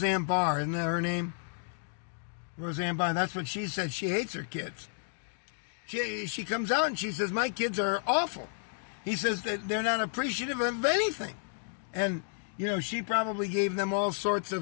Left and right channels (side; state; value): right; silent; digital silence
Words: Barr, isn't that her name? Roseanne Barr, that's what she said. She hates her kids. She comes out and she says, my kids are awful. He says that they're not appreciative of anything. And, you know, she probably gave them all sorts